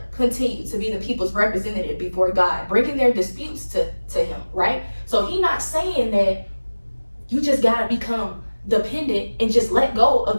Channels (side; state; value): both; inverted; correlation -1.00